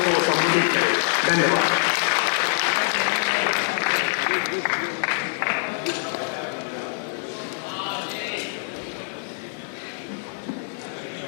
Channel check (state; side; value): silent; right; digital silence